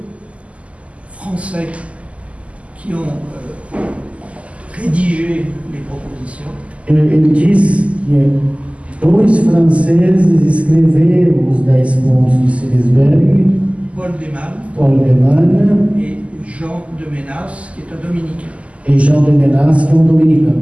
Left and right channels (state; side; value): late; left; 0.063 ms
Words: Français qui ont rédigé les propositions. ele diz que 2 franceses escreveram os 10 pontos de Selisberg, Paul Deman Paul Deman et Jean de Ménas, qui est un dominicain, e Jean de Menas, que é um